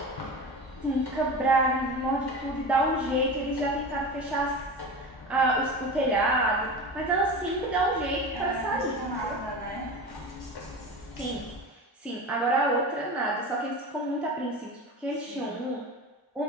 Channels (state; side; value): normal; both; correlation 0.29